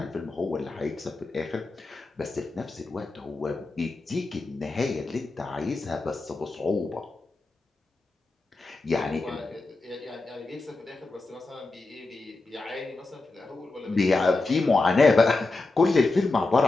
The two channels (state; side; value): quieter; right; 3.3 dB